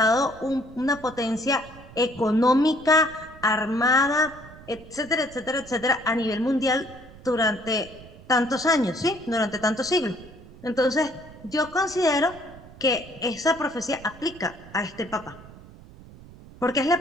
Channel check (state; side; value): noise; right; rumble, 19 dB below the sound